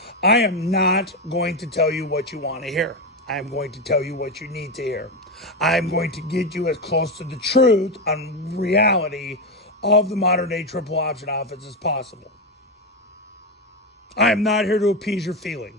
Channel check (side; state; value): both; normal; correlation 0.12